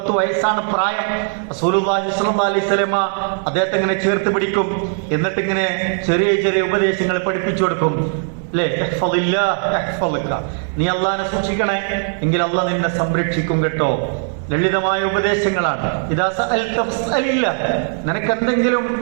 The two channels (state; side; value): silent; left; 58 dB below the other